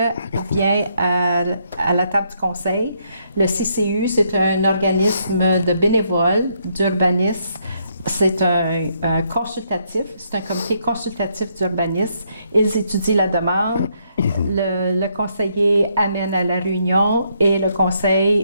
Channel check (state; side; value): inverted; both; correlation -0.74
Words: vient à la table du conseil, le CCU, c'est un organisme de bénévoles d'urbanisme. C'est un consultatif, c'est un comité consultatif d'urbanisme. Ils étudient la demande, le conseiller amène à la réunion et le